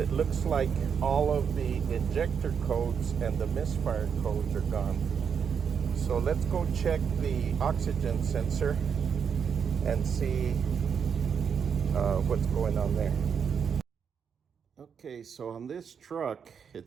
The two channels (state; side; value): quieter; left; 7.0 dB